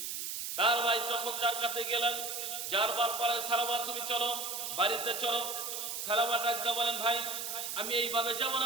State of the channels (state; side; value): noise; right; hiss, 4 dB below the sound